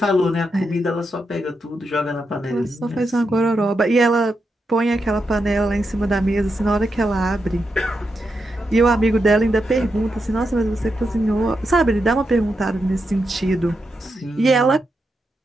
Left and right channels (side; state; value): both; normal; correlation 0.85